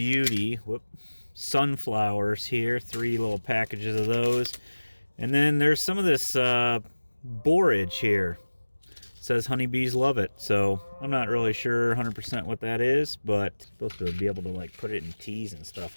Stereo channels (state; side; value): inverted; both; correlation -1.00